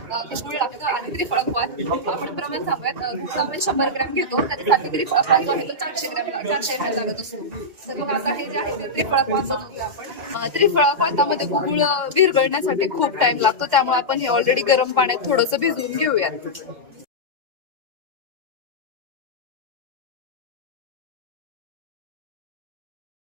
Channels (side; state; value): left; late; 2.0 ms